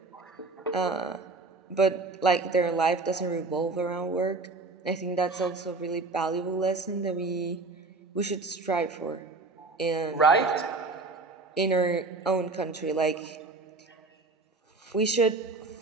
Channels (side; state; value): left; quieter; 3.6 dB